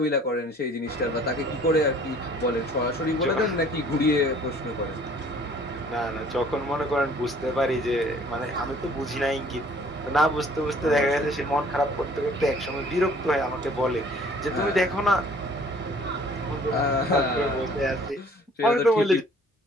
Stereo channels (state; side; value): normal; both; correlation 0.55